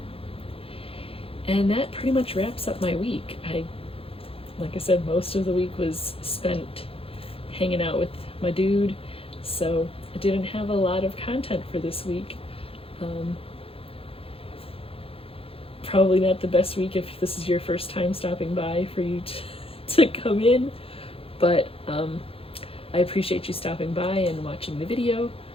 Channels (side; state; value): right; late; 0.27 ms